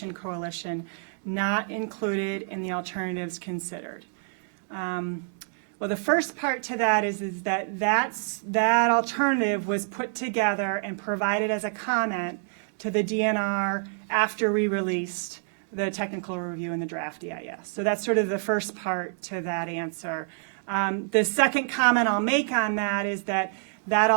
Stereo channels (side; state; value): left; silent; digital silence